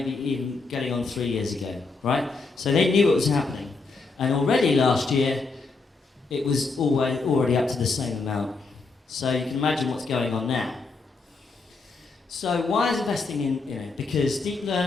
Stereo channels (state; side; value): quieter; right; 4.0 dB